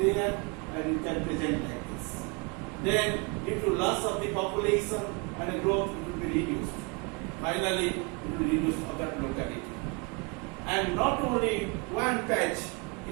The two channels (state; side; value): quieter; left; 31.1 dB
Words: and you can present like this. Then due to loss of the population and the growth, it will be reduced. Finally, it will reduce for that locality. And not only one patch,